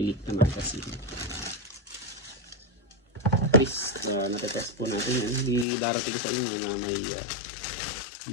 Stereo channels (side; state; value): right; drops out; at 5.7 s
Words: na magazine. At least natetest po natin yan. Hindi darating sa inyo na may